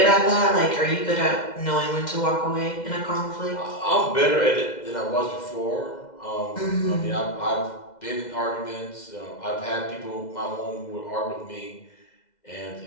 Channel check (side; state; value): right; late; 2.0 ms